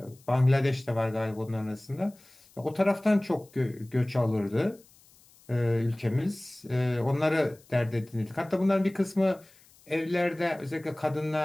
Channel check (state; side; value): noise; left; hiss, 28 dB below the sound